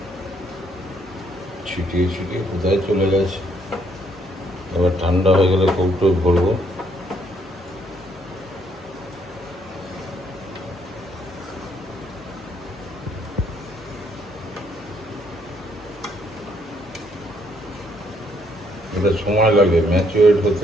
ছিটিয়ে ছিটিয়ে কোথায় চলে গেছে। এবার ঠান্ডা হয়ে গেলে কৌটো ভরবো। এটা সময় লাগে ম্যাচুরেট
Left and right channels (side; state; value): both; normal; correlation 0.70